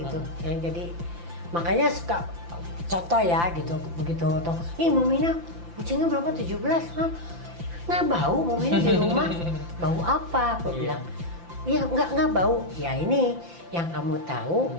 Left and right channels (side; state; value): left; late; 5.9 ms